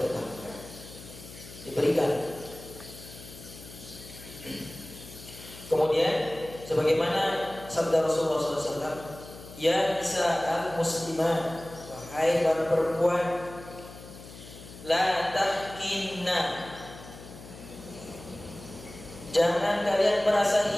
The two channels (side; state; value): left; noise; hum, 16 dB below the sound